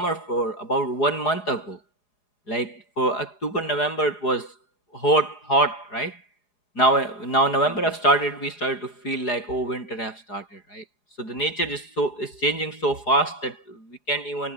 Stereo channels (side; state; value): right; late; 4.8 ms